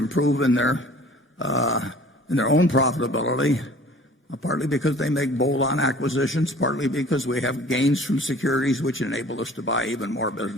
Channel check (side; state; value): both; normal; correlation 0.48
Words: in their own profitability, partly because they make bolt-on acquisitions, partly because we have gains from securities which enable us to buy even more